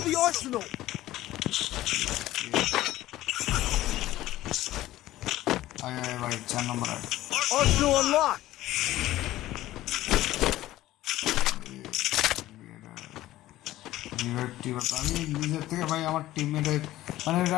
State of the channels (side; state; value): right; quieter; 15.4 dB